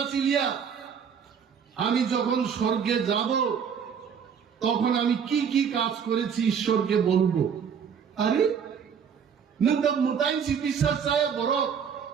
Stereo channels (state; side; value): quieter; left; 7.2 dB